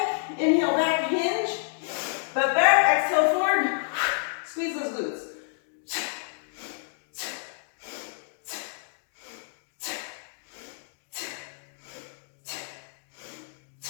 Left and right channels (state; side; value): silent; right; digital silence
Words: inhale back, hinge, butt back, exhale forward, squeeze those glutes.